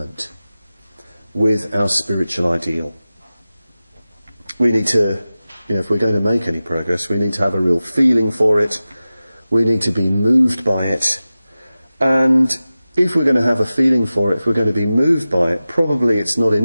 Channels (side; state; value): both; inverted; correlation -0.95